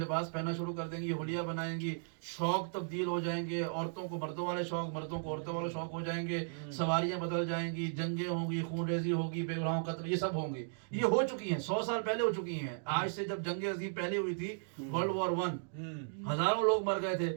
پہننا شروع کر دیں گی، یہ حلیہ بنائیں گی. شوق تبدیل ہو جائیں گے، عورتوں کو مردوں والے شوق، مردوں کو عورتوں والے شوق ہو جائیں گے. سواریاں بدل جائیں گی، جنگیں ہوں گی، خون ریزی ہوگی، بے گناہوں قتل، یہ سب ہوں گی. یہ ہو چکی ہیں، 100 سال پہلے ہو چکی ہیں. آج سے جب جنگ عظیم پہلے ہوئی تھی ورلڈ وار 1 ہزاروں لوگ مر گئے تھے.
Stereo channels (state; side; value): silent; left; digital silence